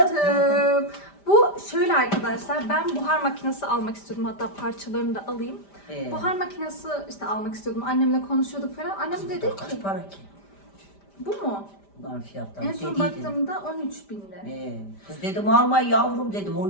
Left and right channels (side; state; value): right; late; 5.1 ms